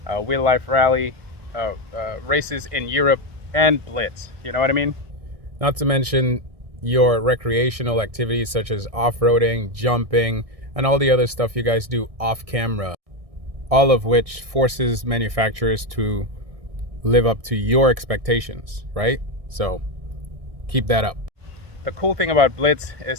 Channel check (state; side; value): late; left; 1.6 ms